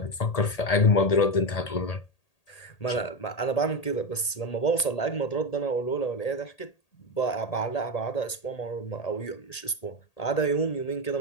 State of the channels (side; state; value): right; late; 1.8 ms